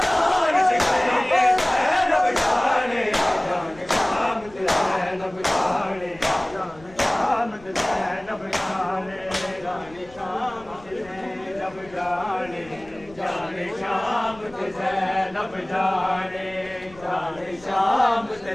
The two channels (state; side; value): noise; left; rumble, 23 dB below the sound